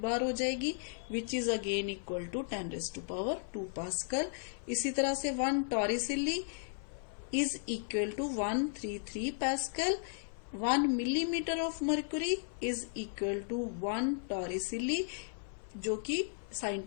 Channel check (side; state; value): right; silent; 54 dB below the other